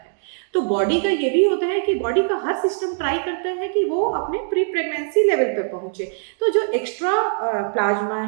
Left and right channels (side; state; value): left; silent; digital silence